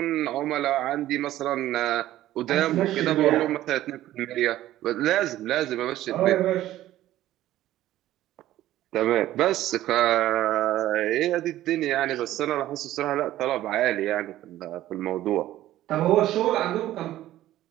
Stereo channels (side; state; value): left; quieter; 14.1 dB